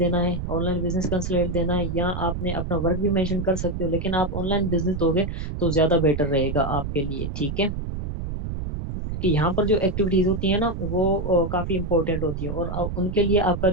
है, ऑनलाइन बिजनेस कंसल्टेंट देना है, या आपने अपना वर्क भी मेंशन कर सकते हो, लेकिन आप ऑनलाइन बिजनेस दोगे तो ज्यादा बेटर रहेगा आपके लिए। ठीक है, क्योंकि यहाँ पर जो एक्टिविटीज होती है ना वो काफी इंपॉर्टेंट होती है, और उनके लिए आपका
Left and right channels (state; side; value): noise; right; rumble, 5 dB below the sound